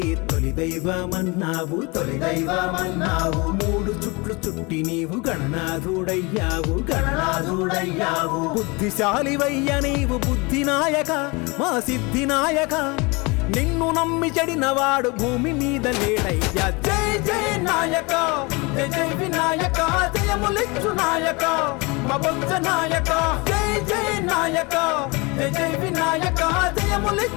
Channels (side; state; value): right; quieter; 27.1 dB